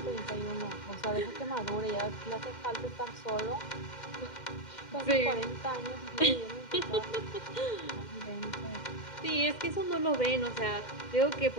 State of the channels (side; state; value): right; late; 2.1 ms